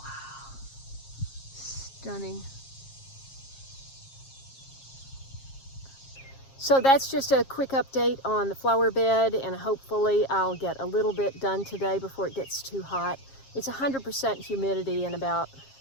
stunning. So that's just a quick update on the flower bed, and hopefully I'll get a little bit done today before it gets too hot. It's 100% humidity and about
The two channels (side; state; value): right; late; 7.4 ms